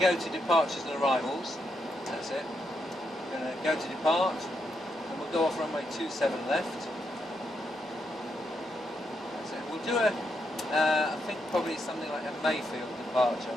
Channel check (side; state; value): both; normal; correlation 0.81